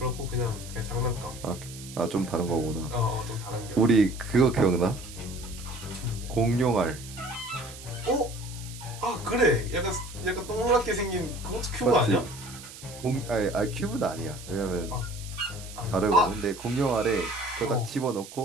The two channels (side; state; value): right; noise; hiss, 15 dB below the sound